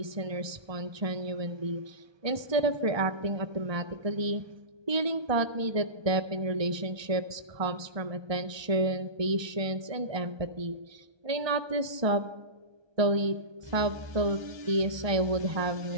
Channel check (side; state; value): left; late; 1.2 ms